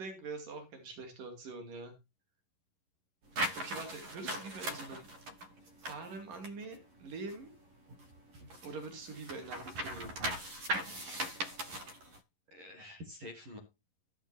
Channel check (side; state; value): left; late; 11 ms